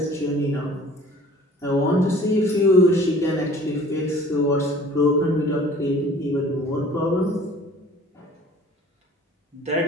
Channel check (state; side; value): normal; both; correlation 0.50